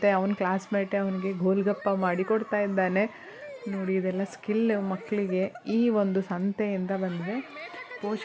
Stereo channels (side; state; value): both; identical; correlation 1.00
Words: ಅವನ ಕ್ಲಾಸ್ಮೇಟೇ ಅವನಿಗೆ ಗೋಲ್ಗಪ್ಪ ಮಾಡಿ ಕೊಡ್ತಾ ಇದ್ದಾನೆ. ನೋಡಿ ಇದೆಲ್ಲ ಸ್ಕಿಲ್ ಮಕ್ಕಳಿಗೆ ಈ ಒಂದು ಸಂತೆಯಿಂದ ಬಂದಿದೆ.